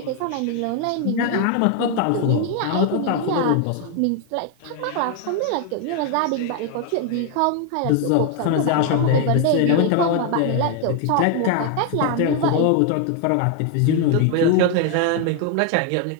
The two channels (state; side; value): different; both; correlation 0.01